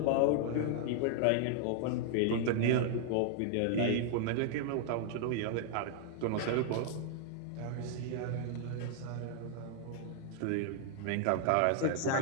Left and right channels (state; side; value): different; both; correlation 0.00